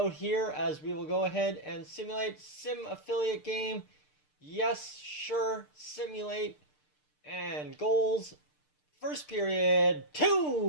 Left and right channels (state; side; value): late; right; 6.7 ms